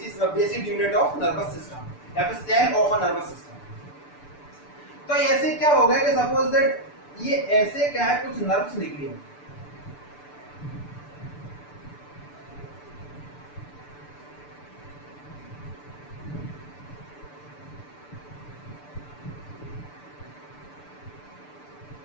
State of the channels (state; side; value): late; right; 6.8 ms